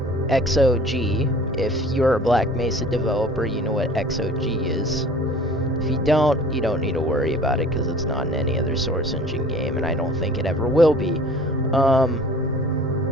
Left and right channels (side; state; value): both; normal; correlation 0.47